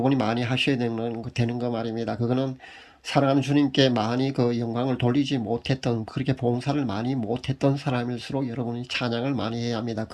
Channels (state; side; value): identical; both; correlation 1.00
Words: 많이 하셔야 되는 거 말입니다. 그거는 사랑하는 주님께 많이 영광을 돌리지 못했던, 그렇게 봉사를 많이 못했던 사람일수록 여러분이 찬양을 많이 해야 합니다.